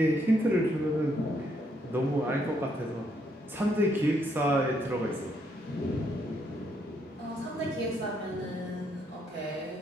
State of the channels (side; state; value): both; normal; correlation 0.74